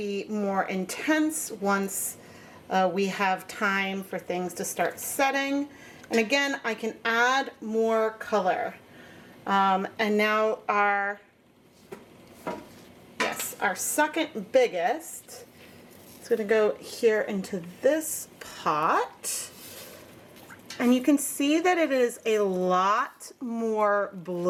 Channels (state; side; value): identical; both; correlation 1.00